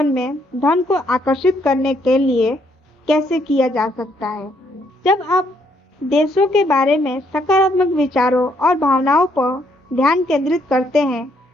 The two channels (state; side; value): normal; both; correlation 0.71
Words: में धन को आकर्षित करने के लिए कैसे किया जा सकता है। जब आप देशों के बारे में सकारात्मक विचारों और भावनाओं पर ध्यान केंद्रित करते हैं,